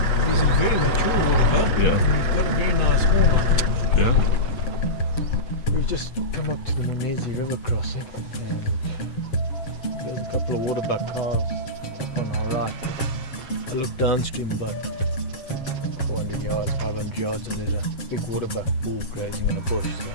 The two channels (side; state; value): right; late; 7.4 ms